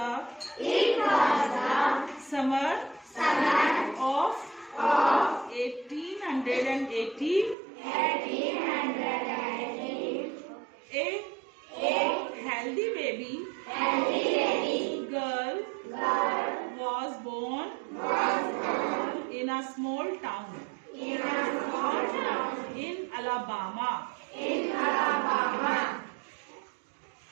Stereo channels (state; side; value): drops out; left; at 7.6 s